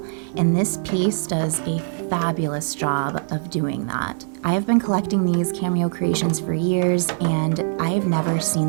and this piece does a fabulous job of doing that. I have been collecting these Cameo creations for years, and I've never seen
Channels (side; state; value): left; silent; 63 dB below the other